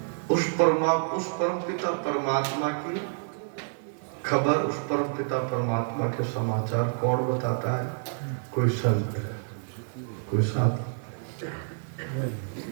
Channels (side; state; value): left; silent; digital silence